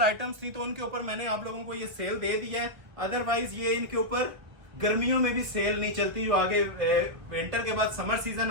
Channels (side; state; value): left; late; 1.4 ms